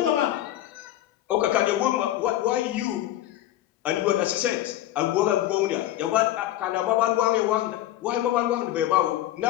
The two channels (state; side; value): quieter; right; 13.7 dB